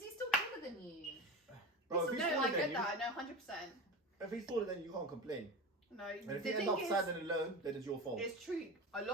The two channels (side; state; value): both; normal; correlation 0.27